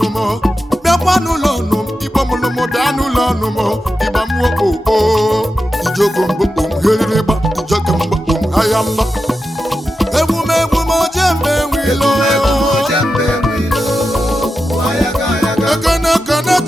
bịakwa n'ụlọ ọnụm igbo mụlụmụ bịa n'ụlọ ọnụmọ ịgba mwokpo ijogo mgbokpom herịrịgba ijogo mgbokpom ahịa mba emume ojembe nwilo ekene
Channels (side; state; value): both; normal; correlation 0.90